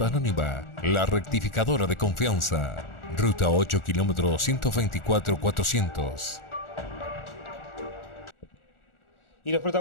Anónima, la rectificadora de confianza. Ruta 8 km 124 400. Y los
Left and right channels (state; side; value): late; right; 1.4 ms